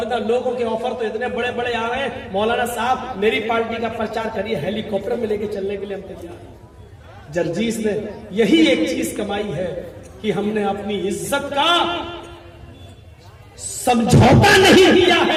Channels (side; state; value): both; identical; correlation 1.00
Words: لوگوں کے آفر تو اتنے بڑے بڑے آ رہے ہیں، مولانا صاحب میری پارٹی کا پرچار کریے، ہیلی کاپٹر میں لے کے چلنے کے لیے ہم تیار ہیں۔ جرجیس نے یہی ایک چیز کمائی ہے کہ ہم نے اپنی عزت کا سمجھوتا نہیں کیا